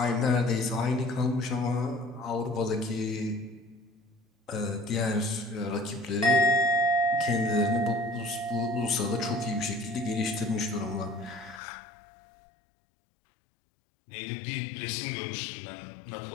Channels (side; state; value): right; drops out; at 11.6 s